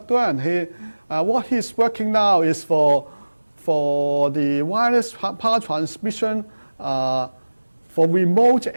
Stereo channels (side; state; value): both; inverted; correlation -1.00